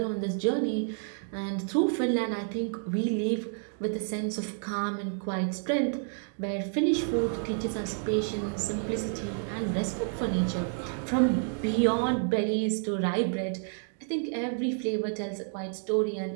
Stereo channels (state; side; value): silent; left; 57 dB below the other